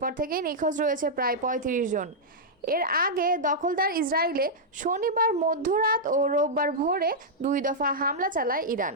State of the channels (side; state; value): both; normal; correlation -0.08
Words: থেকেই নিখোঁজ রয়েছে প্রায় ৩৫ জন। এর আগে দখলদার ইসরায়েলে শনিবার মধ্যরাত ও রোববার ভোরে ২ দফা হামলা চালায় ইরান।